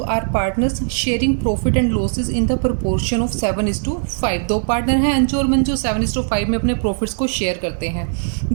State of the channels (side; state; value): left; silent; digital silence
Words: are partners sharing profit and losses in the proportion of 7:5. दो पार्टनर हैं अंजू और मंजू, 7:5 में अपने प्रॉफिट्स को शेयर करते हैं.